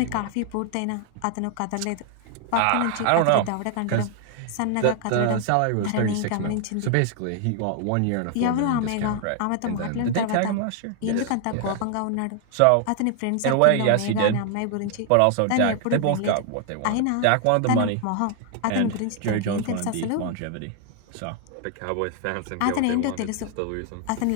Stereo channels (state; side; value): different; both; correlation 0.00